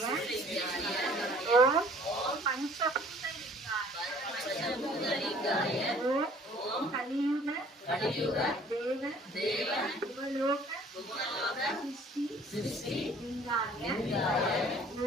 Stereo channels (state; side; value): normal; both; correlation 0.54